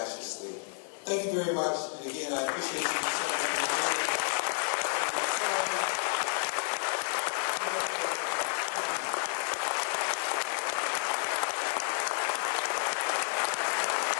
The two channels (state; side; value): silent; right; 57 dB below the other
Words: state. Thank you very much, and again, I appreciate your concern for me.